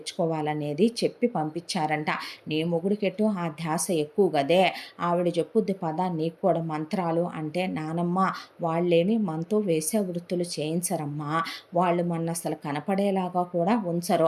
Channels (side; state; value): both; identical; correlation 1.00